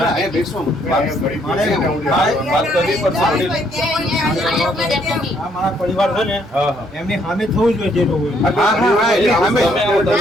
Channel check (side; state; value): both; normal; correlation 0.69